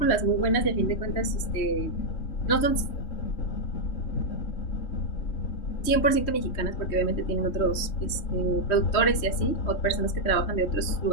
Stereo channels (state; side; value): late; right; 3.2 ms